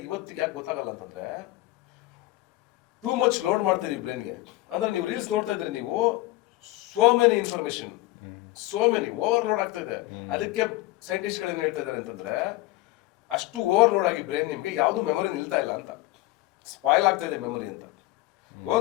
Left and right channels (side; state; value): right; quieter; 18.3 dB